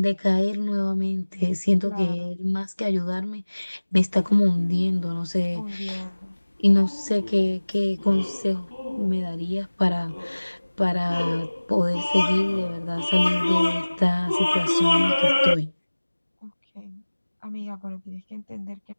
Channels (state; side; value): inverted; both; correlation -1.00